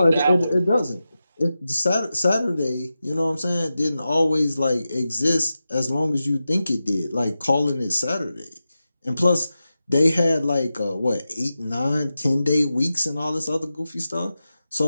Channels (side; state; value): both; inverted; correlation -0.92